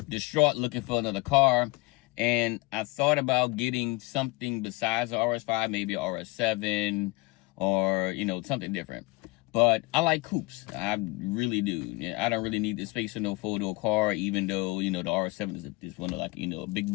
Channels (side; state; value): right; quieter; 23.6 dB